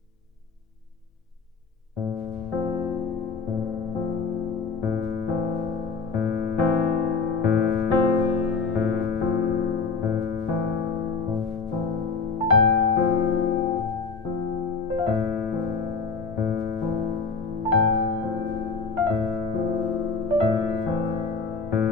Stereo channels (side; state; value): right; quieter; 4.8 dB